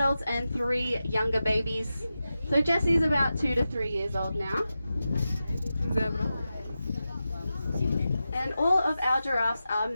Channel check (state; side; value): inverted; both; correlation -0.92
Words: and 3 younger babies. So Jessie's about 2 to 3 years old now. Zebra. And all of our giraffes are